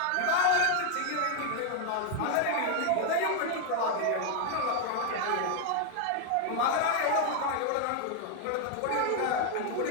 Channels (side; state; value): both; different; correlation 0.00